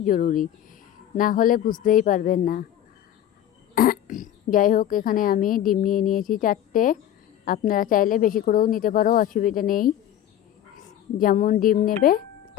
জরুরি, না হলে বুঝতেই পারবেন না। যাই হোক, এখানে আমি ডিম নিয়ে নিয়েছি 4টে। আপনারা চাইলে বেশি করেও নিতে পারো, অসুবিধা নেই। যেমন ডিম নেবে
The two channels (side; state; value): right; quieter; 11.2 dB